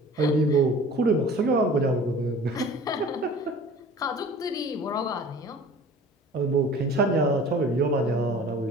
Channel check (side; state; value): both; normal; correlation 0.44